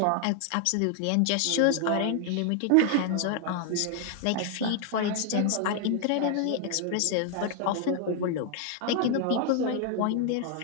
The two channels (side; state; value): both; different; correlation 0.00